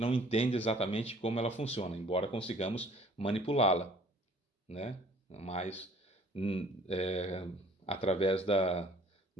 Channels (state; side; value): normal; both; correlation 0.54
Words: não entende exatamente como ela funciona, embora consigamos manipulá-la, né? Mas através